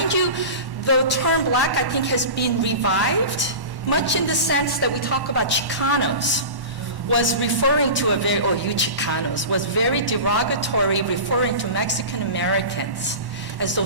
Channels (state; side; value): late; left; 1.1 ms